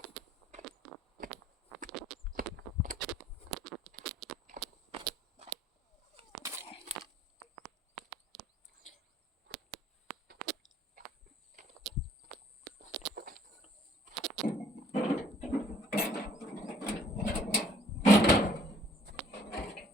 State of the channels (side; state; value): both; normal; correlation 0.60